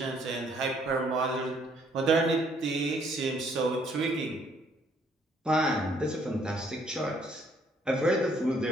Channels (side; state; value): both; normal; correlation 0.65